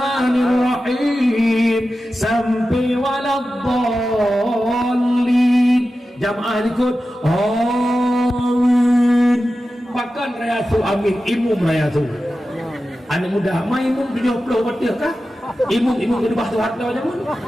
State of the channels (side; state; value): both; normal; correlation 0.93